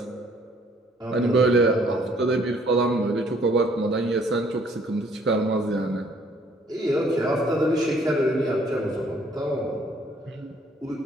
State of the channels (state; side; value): normal; both; correlation 0.62